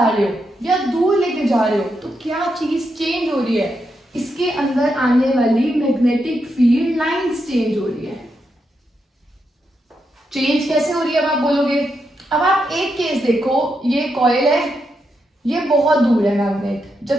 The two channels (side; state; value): both; normal; correlation 0.83